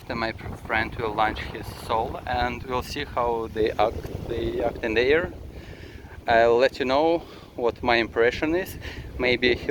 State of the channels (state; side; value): identical; both; correlation 1.00